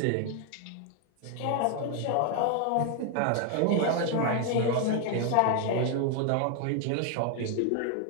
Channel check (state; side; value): different; both; correlation 0.00